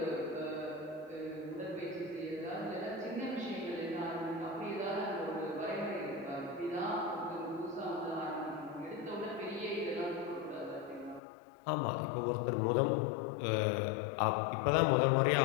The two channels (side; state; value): right; drops out; at 11.2 s